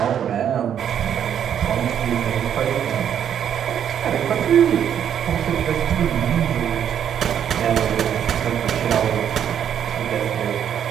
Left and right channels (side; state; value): left; quieter; 9.2 dB